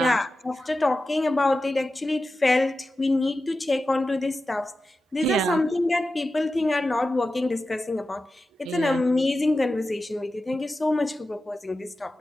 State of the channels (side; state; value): both; normal; correlation 0.93